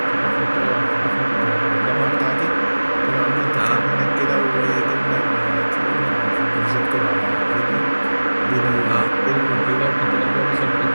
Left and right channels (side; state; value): both; inverted; correlation -1.00